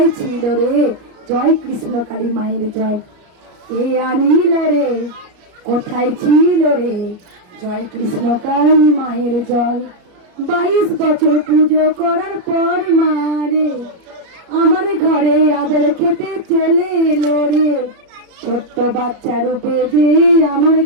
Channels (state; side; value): late; left; 34 ms